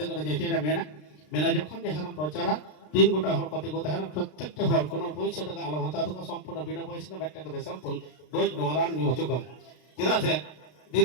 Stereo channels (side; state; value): right; late; 33 ms